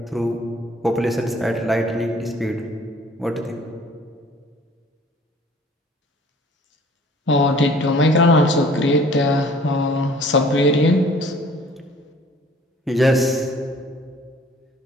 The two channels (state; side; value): normal; both; correlation 0.53